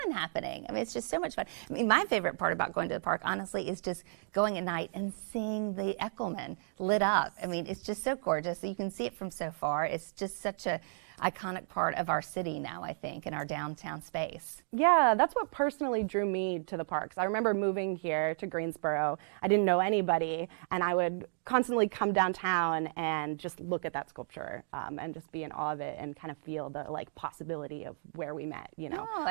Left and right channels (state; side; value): silent; left; digital silence